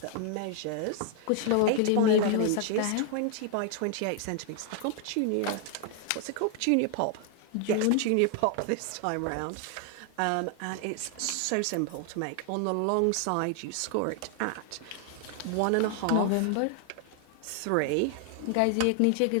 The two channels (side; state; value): both; different; correlation 0.00